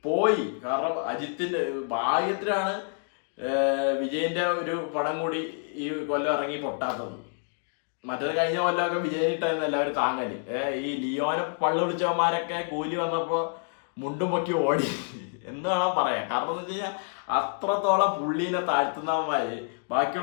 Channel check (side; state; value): right; silent; digital silence